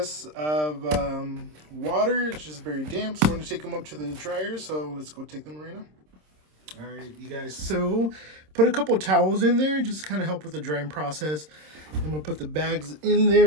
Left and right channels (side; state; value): left; late; 26 ms